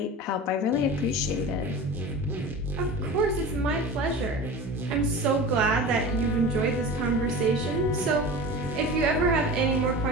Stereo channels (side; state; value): both; normal; correlation 0.33